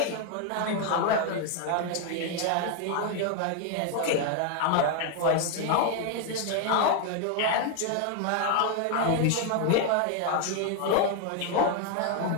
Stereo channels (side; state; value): both; different; correlation 0.01